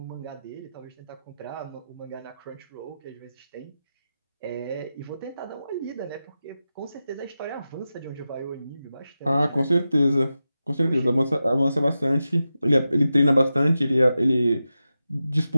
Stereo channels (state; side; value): inverted; both; correlation -0.92